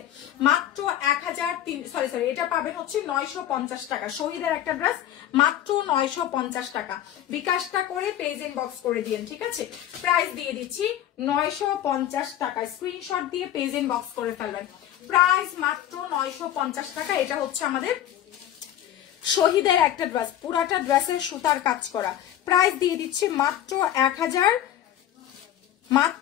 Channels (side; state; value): right; quieter; 11.6 dB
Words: মাত্র 1300, সরি এটা পাবেন হচ্ছে 950 টাকা। শহীদের একটা ড্রেস মাত্র 950 টাকা। বিকাশটা করে পেজ ইনবক্স করে দিন, ঠিক আছে? প্রাইস দিয়ে দিচ্ছি 950 টাকা। স্ক্রিনশট দিয়ে পেজ ইনবক্স করে ফেলবেন। প্রাইস মাত্র 950 টাকা। এটা হচ্ছে আমাদের শহীদের একটা ড্রেস, পুরাটা ড্রেসের সুতার কাজ করা। প্রাইস দিয়ে দিচ্ছি মাত্র 1000,